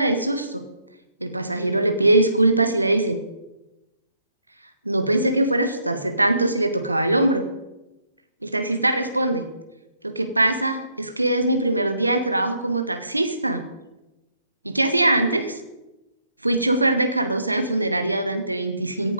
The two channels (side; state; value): both; inverted; correlation -0.72